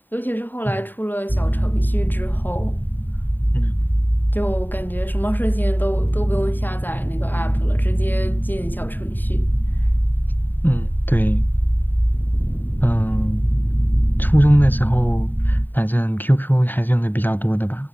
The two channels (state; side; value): late; right; 0.091 ms